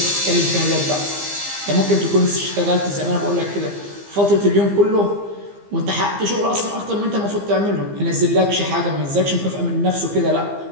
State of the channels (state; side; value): late; left; 15 ms